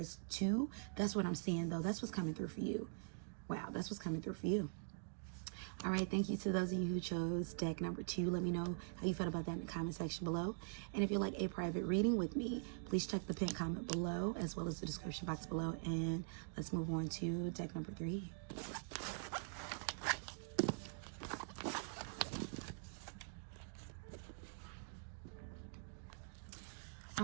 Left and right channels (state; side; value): silent; left; digital silence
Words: to, that's what I'm seeing, though. That's what's coming through for you. Wow, that's what's coming through for you. All right, thank you to those of you who chose deck number 2. Let me know how you felt about that in the comment section below. And if you'd like a private reading with me, please check the pinned comment below, as well as the description box below. And let's move on to deck number 3.